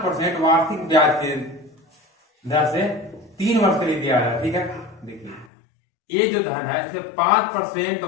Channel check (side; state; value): right; drops out; at 5.5 s